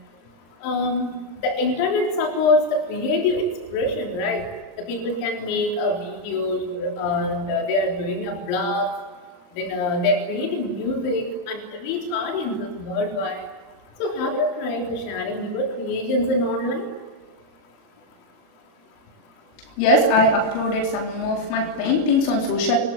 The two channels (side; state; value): right; late; 26 ms